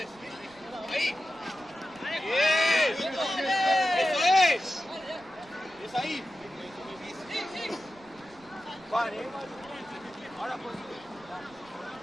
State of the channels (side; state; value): right; noise; rumble, 26 dB below the sound